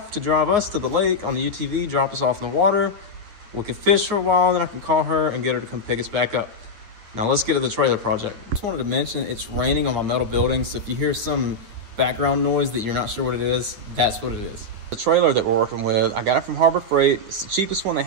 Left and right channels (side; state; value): left; late; 9.3 ms